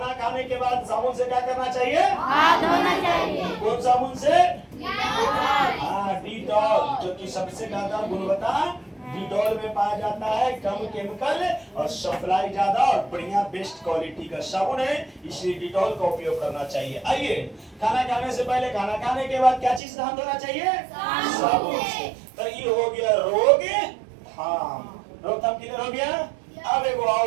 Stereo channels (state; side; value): drops out; left; at 19.8 s